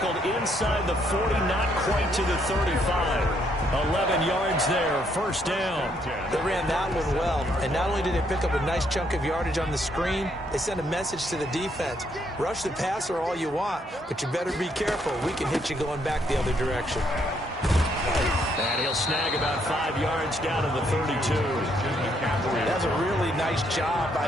inside the 40, not quite to the 35. 11 yards there, first down. They ran that one well, and not only did they pick up a nice chunk of yardage on the screen, they sent a message to the defense. Rush the passer all you want, but you better be careful. We can hit you going back the other direction. And he'll snag about 5 yards down to the 32. That's a really nice job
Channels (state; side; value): normal; both; correlation 0.72